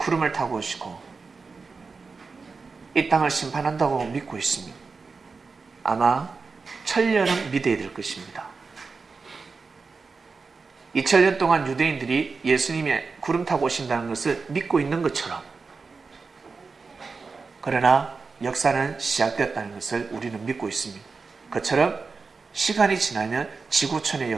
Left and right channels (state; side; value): quieter; left; 4.6 dB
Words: 타고 오시고 이 땅을 심판한다고 믿고 있습니다. 아마 천년은 믿어야 될 것입니다. 2000년 동안 유대인들이 예수님이 구름 타고 오신다는 것을 믿고 있는 것처럼, 그러나 역사는 시작되었다는 것을 우리는 믿고 있습니다. 그처럼 시간이 지나면 지구촌의